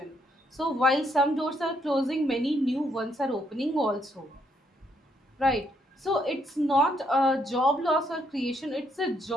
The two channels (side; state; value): both; normal; correlation 0.73